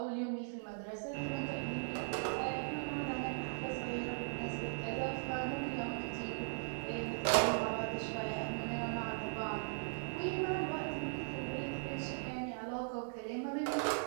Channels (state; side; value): silent; left; digital silence